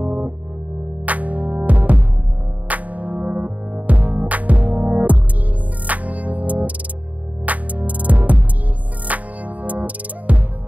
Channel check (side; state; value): left; late; 0.072 ms